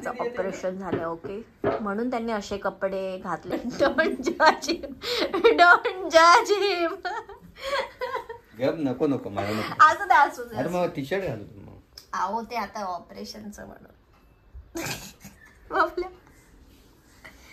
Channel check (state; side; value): identical; both; correlation 1.00